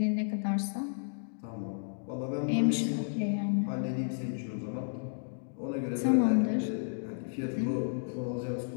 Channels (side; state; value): right; silent; digital silence